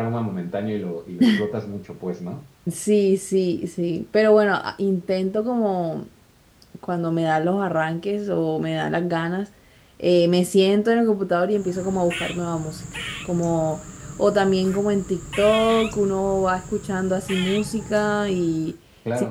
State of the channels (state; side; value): identical; both; correlation 1.00